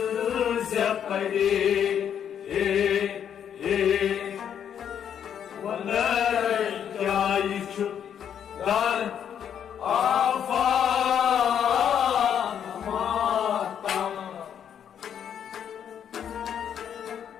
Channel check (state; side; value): quieter; right; 8.8 dB